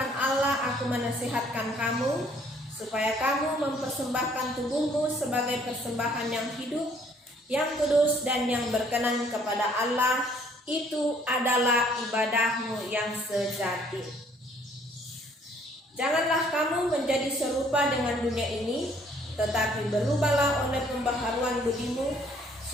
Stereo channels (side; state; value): both; normal; correlation 0.62